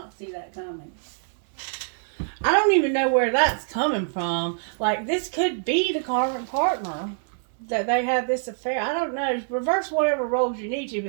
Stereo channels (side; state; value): left; silent; digital silence